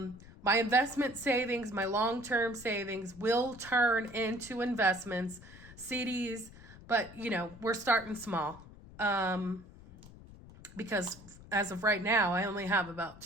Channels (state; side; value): noise; left; rumble, 19 dB below the sound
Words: investment savings, my long-term savings will turn into investments, CDs, but we're starting small. because as of right now, I only have about